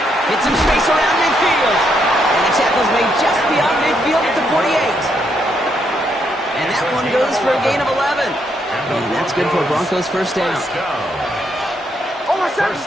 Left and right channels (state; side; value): normal; both; correlation 0.76